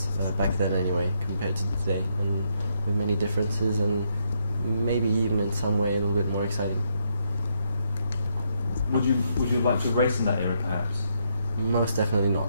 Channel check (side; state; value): both; inverted; correlation -0.77